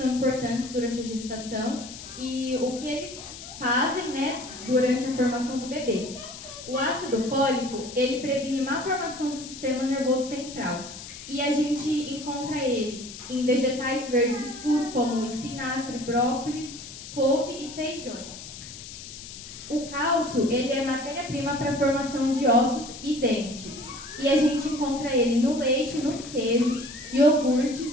importantes durante a gestação e o que eles fazem, né, durante a formação do bebê. O ácido fólico, ele previne má formação do sistema nervoso central. E a gente encontra ele em vegetais verdes escuros, como espinafre, brócolis, couve e feijões. O cálcio, ele é matéria-prima para a formação de ossos e dentes. E a gente encontra ele no leite, nos queijos,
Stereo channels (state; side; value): noise; left; hiss, 13 dB below the sound